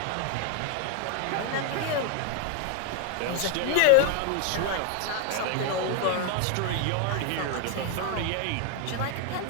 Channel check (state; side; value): different; both; correlation 0.01